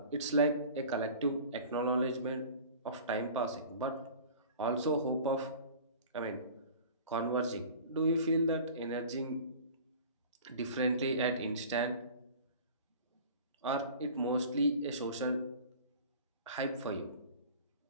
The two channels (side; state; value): both; inverted; correlation -0.42